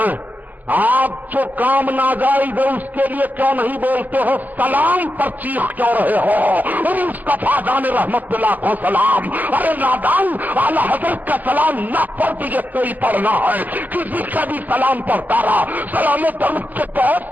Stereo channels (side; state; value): left; late; 0.083 ms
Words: आप जो काम नाजायज है उसके लिए क्यों नहीं बोलते हो? सलाम पर चीख क्यों रहे हो? मुस्तफा जाने रहमत पे लाखों सलाम। अरे नादान, आला हजरत का सलाम न पढ़ तुझे कोई पढ़ना है, किसी का भी सलाम पढ़ता रहा। सलाम दरूद के बहुत